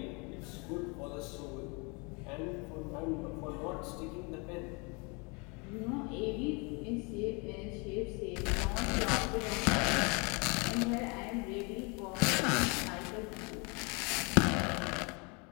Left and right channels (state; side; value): quieter; right; 31.1 dB